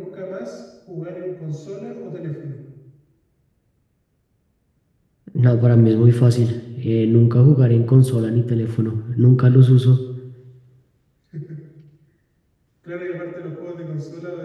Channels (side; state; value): both; identical; correlation 1.00